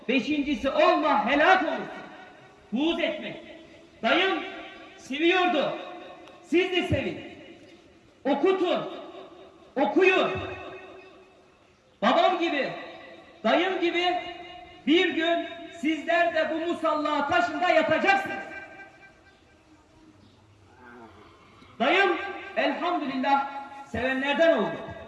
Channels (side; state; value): both; identical; correlation 1.00